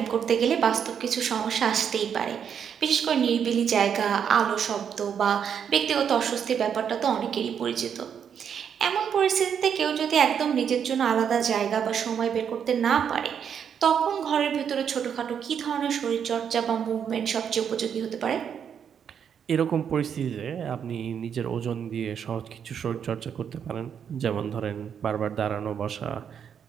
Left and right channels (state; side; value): quieter; left; 7.9 dB